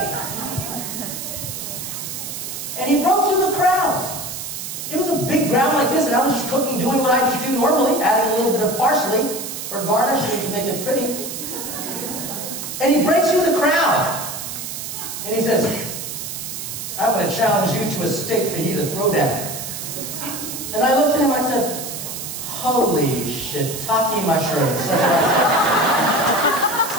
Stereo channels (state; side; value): noise; right; hiss, 7 dB below the sound